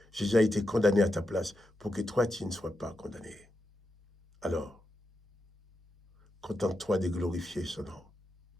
Jésus a été condamné à ta place pour que toi, tu ne sois pas condamné. Alors, contente-toi de glorifier son nom.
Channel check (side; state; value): both; normal; correlation 0.86